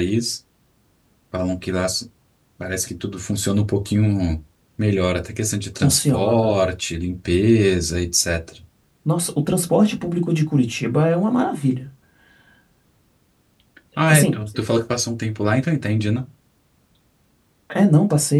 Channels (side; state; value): both; identical; correlation 1.00